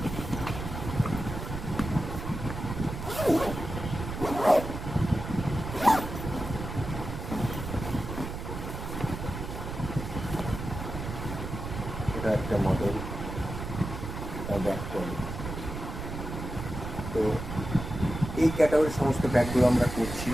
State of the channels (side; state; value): right; noise; rumble, 7 dB below the sound